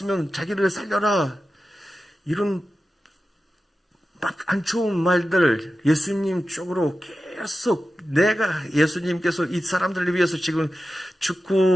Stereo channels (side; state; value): both; normal; correlation 0.93